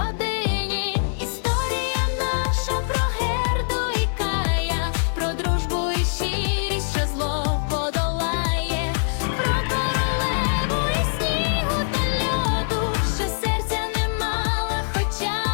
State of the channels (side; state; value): right; silent; digital silence